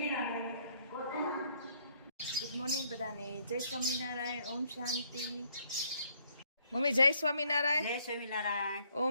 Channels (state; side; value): inverted; both; correlation -0.68